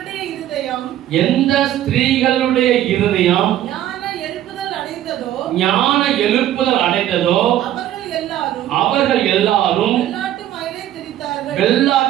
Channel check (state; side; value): quieter; left; 12.5 dB